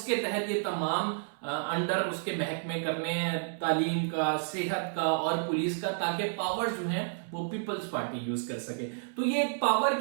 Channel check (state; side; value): silent; left; 57 dB below the other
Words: तहत ये तमाम अंडर उसके महकमे करने हैं, तालीम का, सेहत का और पुलिस का, ताकि पावर्स जो है वो पीपल्स पार्टी यूज कर सके। तो ये एक पावर